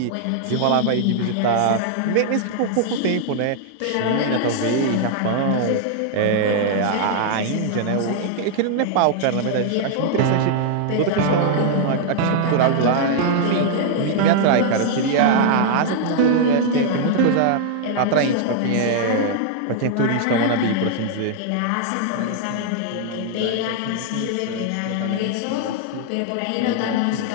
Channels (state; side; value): different; both; correlation -0.01